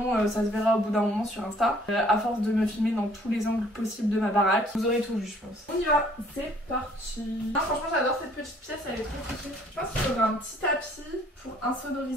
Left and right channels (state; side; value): normal; both; correlation 0.59